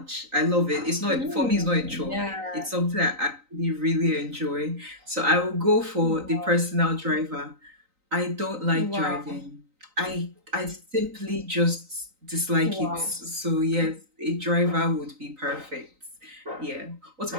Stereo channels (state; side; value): late; left; 3.9 ms